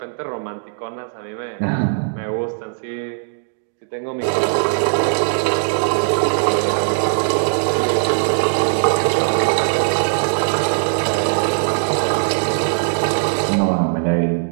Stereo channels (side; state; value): left; silent; digital silence